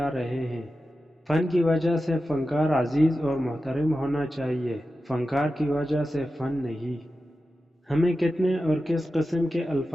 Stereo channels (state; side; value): normal; both; correlation 0.92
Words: رہے ہیں۔ فن کی وجہ سے فنکار عزیز اور محترم ہونا چاہیے، فنکار کی وجہ سے فن نہیں۔ ہمیں کتنے اور کس قسم کے